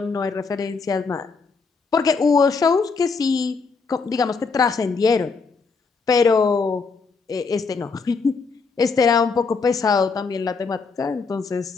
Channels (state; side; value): quieter; right; 4.8 dB